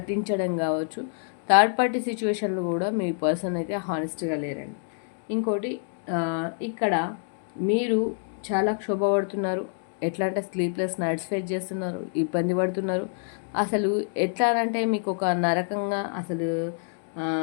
కావచ్చు. థర్డ్ పార్టీ సిచ్యువేషన్లో కూడా మీ పర్సన్ అయితే హానెస్ట్గా లేరండి. ఇంకోటి ఇక్కడ మీరు చాలా క్షోభపడుతున్నారు. ఎట్లా అంటే స్లీప్లెస్ నైట్స్ ఫేస్ చేస్తున్నారు, ఇబ్బంది పడుతున్నారు. అసలు ఎట్లా అంటే మీకు ఒక నరకంగా, అసలు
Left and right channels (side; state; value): right; silent; 60 dB below the other